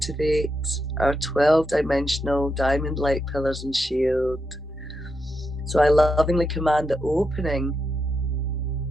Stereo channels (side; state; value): both; normal; correlation 0.84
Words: our 12-dimensional diamond light pillars and shield. So I lovingly command the opening